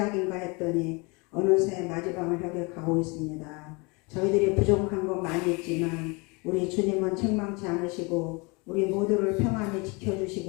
했더니 어느새 마지막을 향해 가고 있습니다. 저희들이 부족한 건 많이 있지만 우리 주님은 책망치 않으시고 우리 모두를 평안히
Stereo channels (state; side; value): quieter; right; 28.8 dB